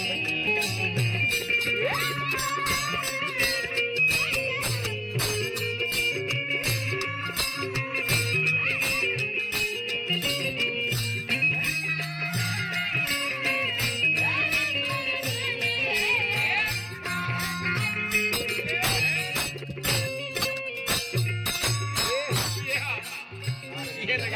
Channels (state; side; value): identical; both; correlation 1.00